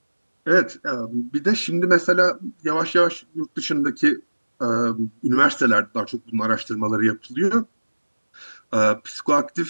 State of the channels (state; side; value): inverted; both; correlation -1.00